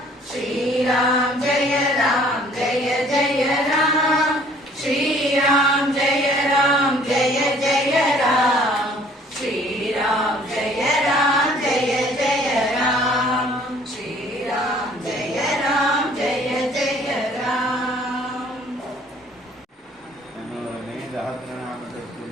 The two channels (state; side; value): normal; both; correlation 0.56